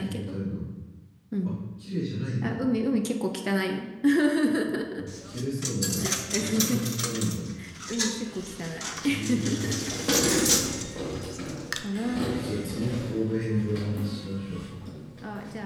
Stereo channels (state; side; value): identical; both; correlation 1.00